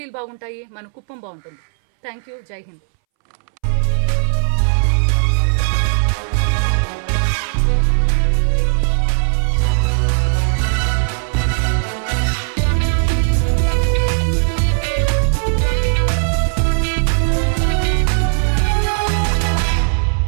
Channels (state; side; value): silent; left; 66 dB below the other